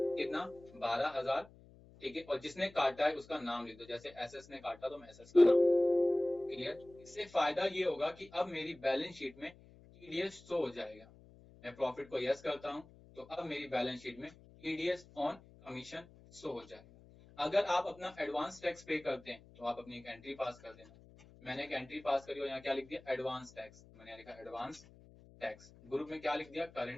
कितना? 12,000। ठीक है, और जिसने काटा है उसका नाम लिख दो। जैसे एसएस ने काटा तो मैं एसएस का नाम। क्लियर? इससे फायदा ये होगा कि अब मेरी बैलेंस शीट में टीडीएस शो हो जाएगा। मैं प्रॉफिट को यस करता हूं तो अब मेरी बैलेंस शीट में टीडीएस ऑन कमीशन शो हो जाएगा। अगर आप अपना एडवांस टैक्स पे करते हैं तो आप अपनी एक एंट्री पास कर देना। मैंने एक एंट्री पास करी और यहाँ क्या लिख दिया? Advance tax. मैंने लिखा एडवांस टैक्स। ग्रुप में क्या लिख दिया?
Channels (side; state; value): left; noise; hum, 23 dB below the sound